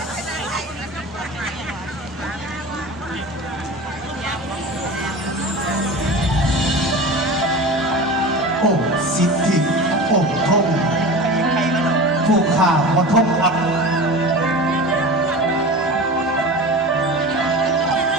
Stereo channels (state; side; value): normal; both; correlation 0.32